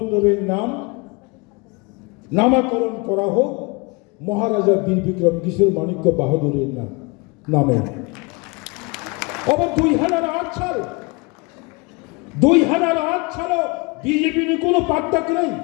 নামকরণ করা হোক মহারাজা বীর বিক্রম কিশোর মাণিক্য বাহাদুরের নামে। আবার 2008 সাল 2008 সালে বিজেপির কোনো পার্থক্য নেই।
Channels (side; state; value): right; quieter; 27.5 dB